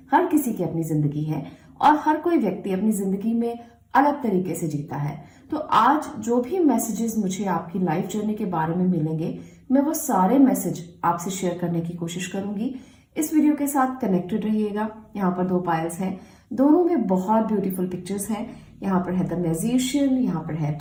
हर किसी की अपनी जिंदगी है और हर कोई व्यक्ति अपनी जिंदगी में अलग तरीके से जीता है। तो आज जो भी मैसेजेस मुझे आपकी लाइफ जर्नी के बारे में मिलेंगे मैं वो सारे मैसेज आपसे शेयर करने की कोशिश करूंगी। इस वीडियो के साथ कनेक्टेड रहिएगा। यहाँ पर 2 पायल्स हैं, दोनों में बहुत ब्यूटीफुल पिक्चर्स हैं। यहाँ पर है द मैजिशियन, यहाँ पर है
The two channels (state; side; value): identical; both; correlation 1.00